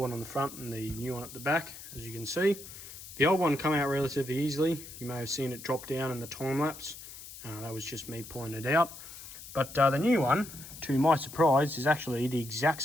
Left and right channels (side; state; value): left; noise; hiss, 14 dB below the sound